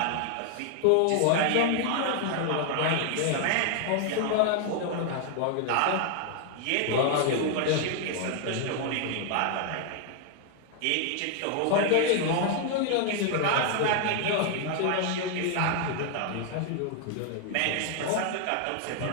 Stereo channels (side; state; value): both; different; correlation 0.00